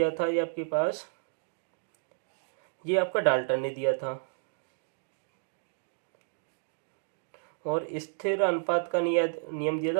था ये आपके पास ये आपका डाल्टन ने दिया था। और स्थिर अनुपात का नियम दिया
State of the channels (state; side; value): silent; left; digital silence